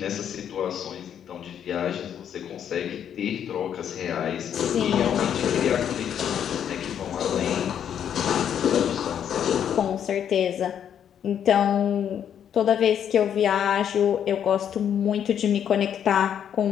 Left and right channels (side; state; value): right; quieter; 9.0 dB